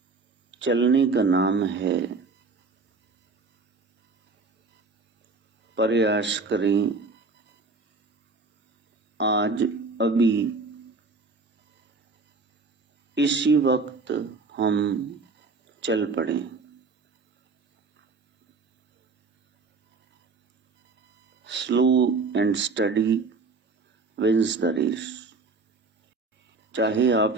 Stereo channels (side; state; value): left; quieter; 4.1 dB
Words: चलने का नाम है। प्रयास करें आज अभी इसी वक्त हम चल पड़े। Slow and steady wins the race. चाहे